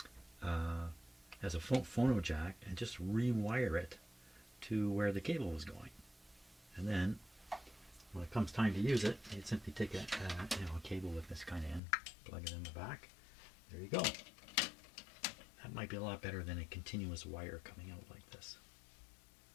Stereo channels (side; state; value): right; drops out; at 11.8 s